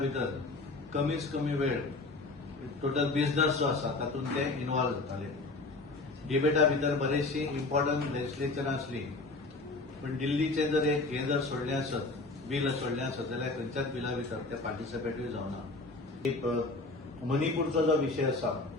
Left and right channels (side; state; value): right; quieter; 3.3 dB